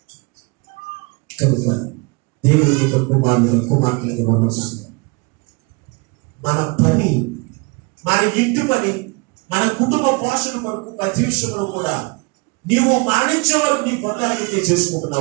కనుక దేవుడి యొక్క కుమార్తె మన పని, మన ఇంటి పని, మన కుటుంబ పోషణ కొరకు ప్రతి విషయంలో కూడా నీవు మరణించే వరకు నీ పనులైతే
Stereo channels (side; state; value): left; quieter; 29.1 dB